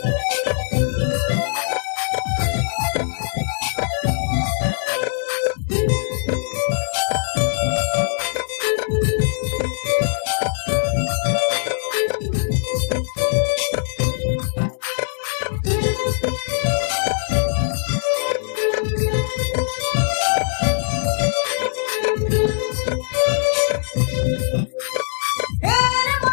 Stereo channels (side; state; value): right; silent; digital silence